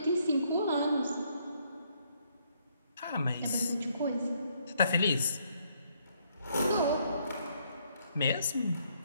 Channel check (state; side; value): inverted; both; correlation -0.70